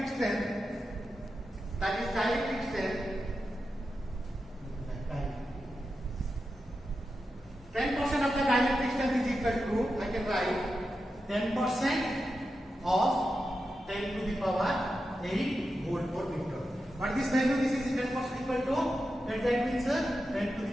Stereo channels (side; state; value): both; normal; correlation 0.89